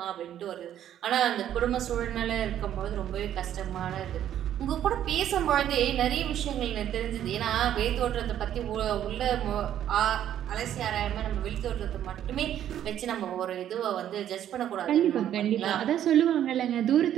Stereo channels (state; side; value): quieter; left; 10.9 dB